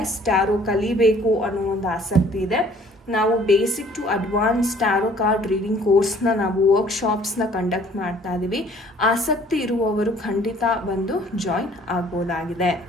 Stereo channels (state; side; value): normal; both; correlation 0.56